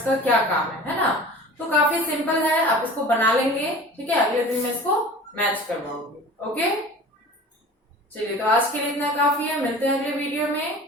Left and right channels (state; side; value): normal; both; correlation 0.40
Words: का क्या काम है ना। तो काफी सिंपल है, आप इसको बना लेंगे, ठीक है। अगले दिन मैं इसको मैच करवाऊंगी, ओके। चलिए तो आज के लिए इतना काफी है, मिलते हैं अगले वीडियो में।